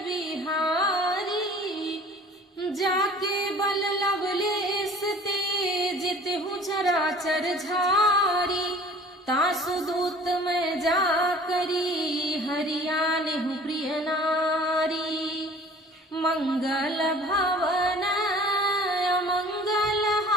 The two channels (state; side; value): normal; both; correlation 0.48